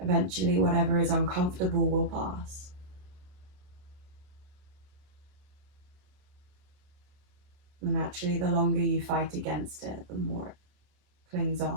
whatever is uncomfortable will pass. And actually, the longer you fight against it, the more it clings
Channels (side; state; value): left; late; 27 ms